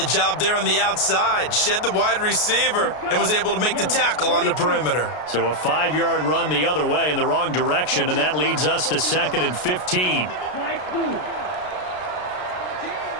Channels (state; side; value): late; right; 33 ms